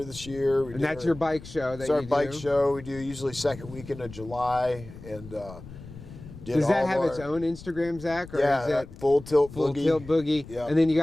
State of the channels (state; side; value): noise; left; rumble, 16 dB below the sound